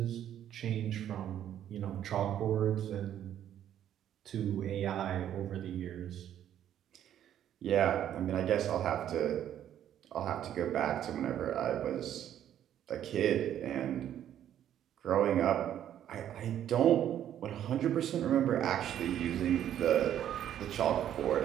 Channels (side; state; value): left; quieter; 10.7 dB